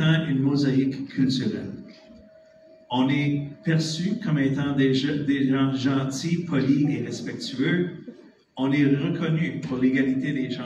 une mosaïque culturelle. On est perçu comme étant des gens gentils, polis et respectueux. On est reconnu pour l'égalité des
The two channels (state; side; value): identical; both; correlation 1.00